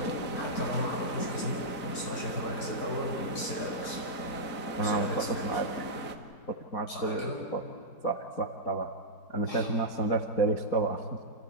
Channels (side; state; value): right; late; 4.1 ms